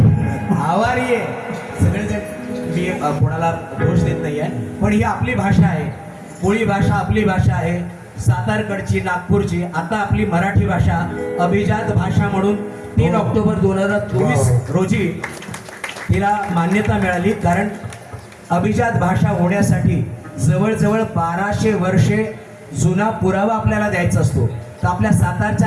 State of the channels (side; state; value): both; identical; correlation 1.00